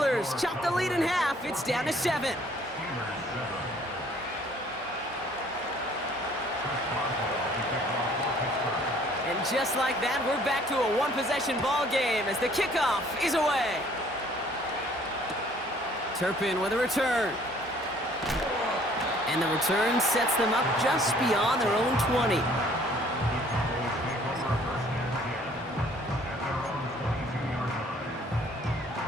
chop the lead in half. It's down to 7. And just like that, we're back to a one-possession ball game as the kickoff is away. Turpin with a return. And the return sets them up just beyond their own 20.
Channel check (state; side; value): normal; both; correlation 0.58